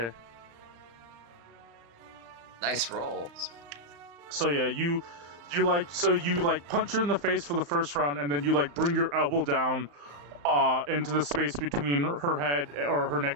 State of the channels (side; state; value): left; late; 35 ms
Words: Nice roll. So yeah, you punch her in the face for the first round, and then you like bring your elbow down into the space between her head or her